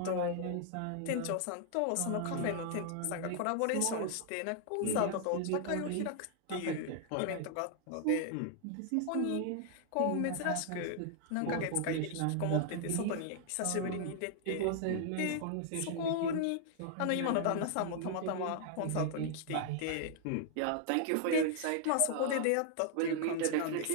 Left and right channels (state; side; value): different; both; correlation -0.01